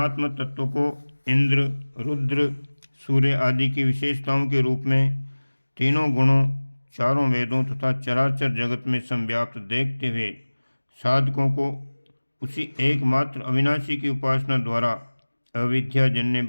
तत्व को इंद्र, रुद्र, सूर्य आदि की विशेषताओं के रूप में तीनों गुणों, चारों वेदों तथा चराचर जगत में संव्याप्त देखते हुए साधकों को उसी एकमात्र अविनाशी की उपासना द्वारा अविद्याजन्य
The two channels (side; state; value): both; inverted; correlation -1.00